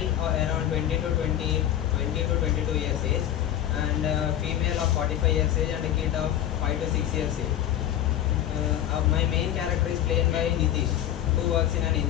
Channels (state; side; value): quieter; right; 11.4 dB